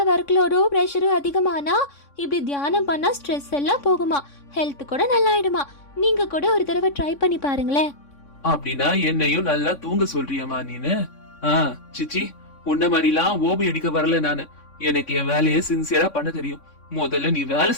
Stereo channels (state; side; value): late; right; 3.6 ms